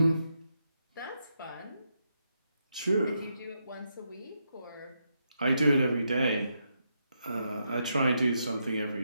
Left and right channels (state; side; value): inverted; both; correlation -0.81